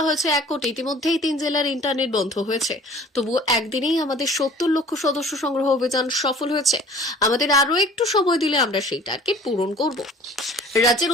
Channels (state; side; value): normal; both; correlation 0.49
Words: হয়েছে 1 কোটি, ইতিমধ্যেই 3 জেলার ইন্টারনেট বন্ধ হয়েছে, তবুও একদিনেই আমাদের 70 লক্ষ সদস্য সংগ্রহ অভিযান সফল হয়েছে। আমাদের আরো একটু সময় দিলে আমরা সেই টার্গেট পূরণ করব। রাজ্যের